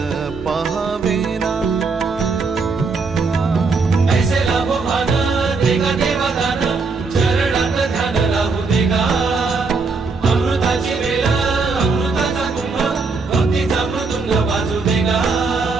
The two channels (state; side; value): quieter; left; 4.3 dB